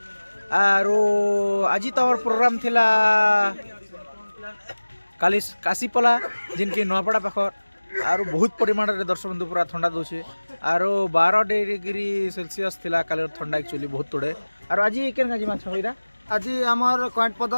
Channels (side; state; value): both; inverted; correlation -1.00